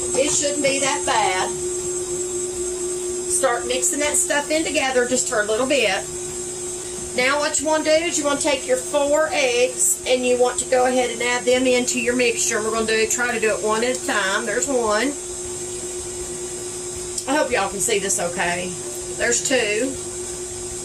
it shouldn't be that bad. Start mixing that stuff in together just for a little bit. Now what you want to do is you want to take your 4 eggs, and you want to go ahead and add them into your mixture. We're going to try to do it one at a time. There's 1. I hope y'all can see this okay. There's 2.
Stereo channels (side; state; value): both; identical; correlation 1.00